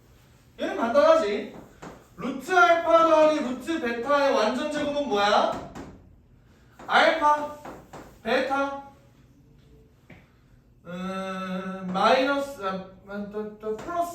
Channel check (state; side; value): identical; both; correlation 1.00